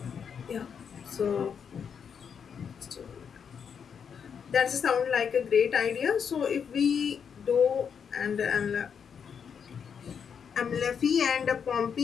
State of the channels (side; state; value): right; quieter; 7.1 dB